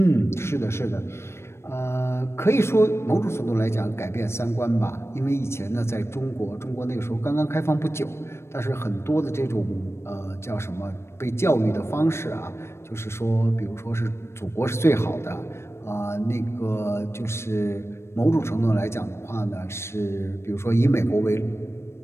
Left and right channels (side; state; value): right; late; 0.13 ms